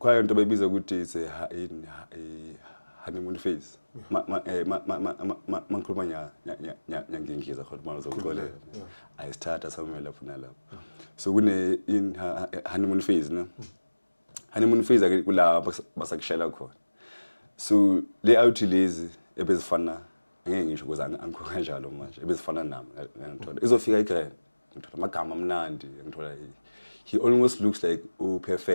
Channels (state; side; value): inverted; both; correlation -1.00